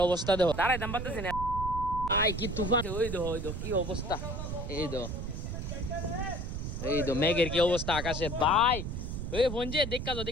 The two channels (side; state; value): right; noise; rumble, 5 dB below the sound